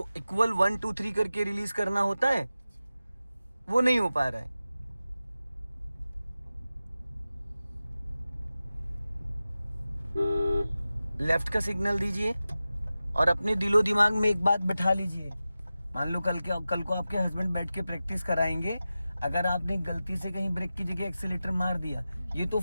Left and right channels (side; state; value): both; inverted; correlation -0.94